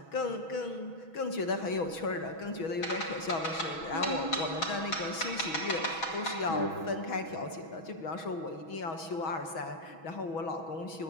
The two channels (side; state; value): right; late; 6.2 ms